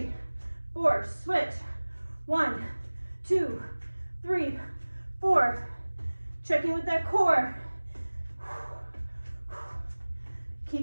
4. Switch. 1, 2, 3, 4. Check in with that core.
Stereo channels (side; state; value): both; inverted; correlation -1.00